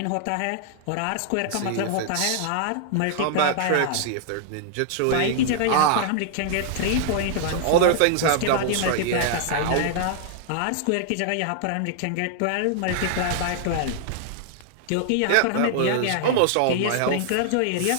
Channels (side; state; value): both; different; correlation -0.01